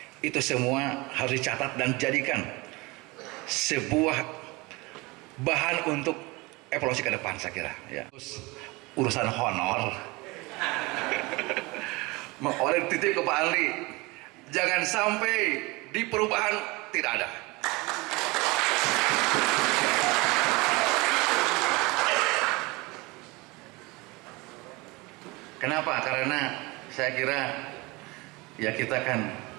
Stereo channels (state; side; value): quieter; left; 24.3 dB